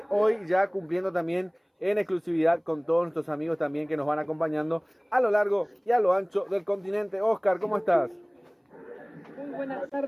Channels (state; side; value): identical; both; correlation 1.00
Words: hoy ya cumpliendo también en exclusividad con todos nuestros amigos también que nos van acompañando a lo largo y a lo ancho del continente. Oscar, ¿cómo estás? Muy buenas